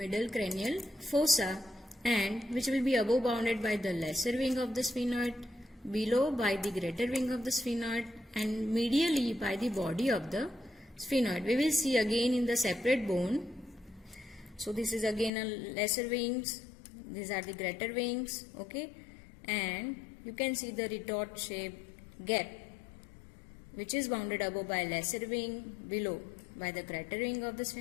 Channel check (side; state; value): right; drops out; at 15.3 s